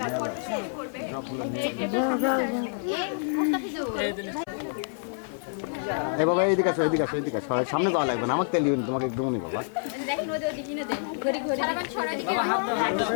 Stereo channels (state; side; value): silent; right; 60 dB below the other